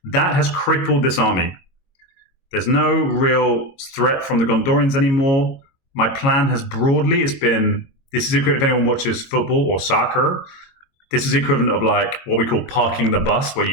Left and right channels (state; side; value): late; right; 22 ms